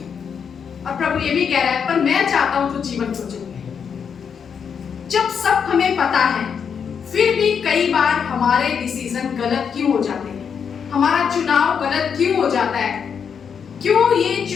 और प्रभु ये भी कह रहा है, पर मैं चाहता हूँ तू जीवन को चुन ले। जब सब हमें पता है, फिर भी कई बार हमारे डिसीजन गलत क्यों हो जाते हैं, हमारा चुनाव गलत क्यों हो जाता है? क्यों ये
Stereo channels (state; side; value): quieter; right; 6.9 dB